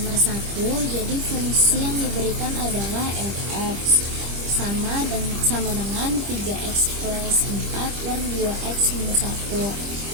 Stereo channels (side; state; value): left; late; 25 ms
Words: 1, jadi fungsi yang diberikan adalah fx sama dengan 3x plus 4 per 2x minus 1.